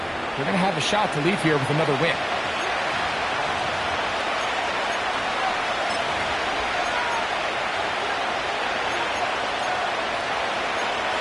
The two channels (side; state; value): both; identical; correlation 1.00